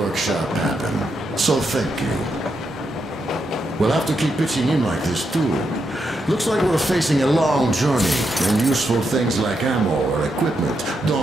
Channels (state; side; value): normal; both; correlation 0.82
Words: happen. So thank you. We'll have to keep pitching in like this too. Looks like we're facing a long journey, and useful things like ammo or equipment